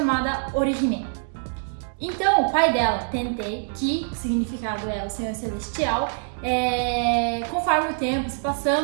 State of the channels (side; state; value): left; silent; digital silence